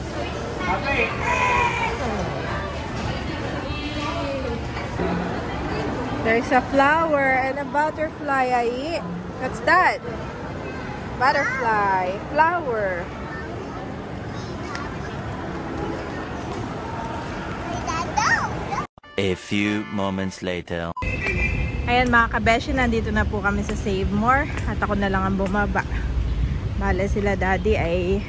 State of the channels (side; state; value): both; identical; correlation 1.00